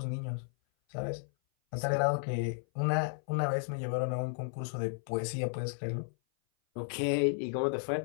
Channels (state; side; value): silent; right; 55 dB below the other